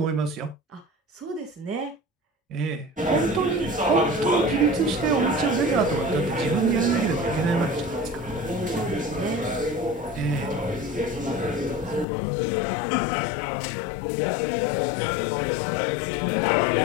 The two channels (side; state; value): right; drops out; at 12.1 s